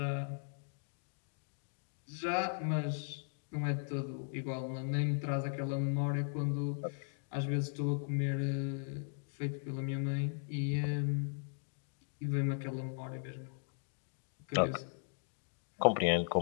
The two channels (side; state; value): right; silent; digital silence